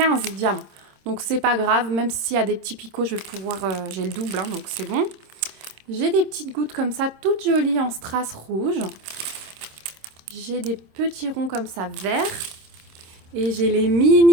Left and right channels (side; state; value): left; late; 26 ms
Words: diamants. Donc, c'est pas grave. Même s'il y a des petits picots, je vais pouvoir... j'ai le double, hein, donc c'est bon. J'ai des petites gouttes comme ça, toutes jolies en strass rouge. J'ai des petits ronds comme ça, verts. Et j'ai les